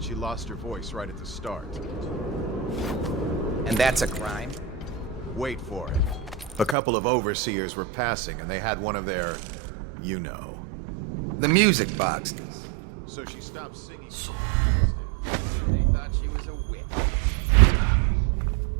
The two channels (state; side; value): drops out; left; at 6.8 s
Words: lost her voice right at the start. And that's a crime? Wait for it. A couple of overseers were passing, and they had one of their, you know. The music boxes. So she stopped singing as they passed, And they thought she was a witch.